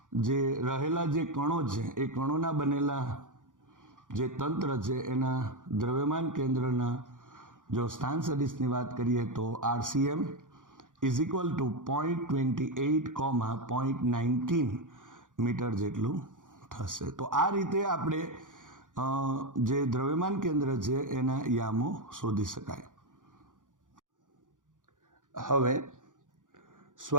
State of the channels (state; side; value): late; left; 0.88 ms